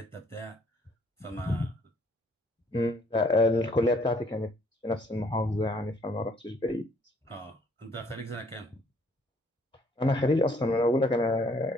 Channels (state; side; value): normal; both; correlation 0.63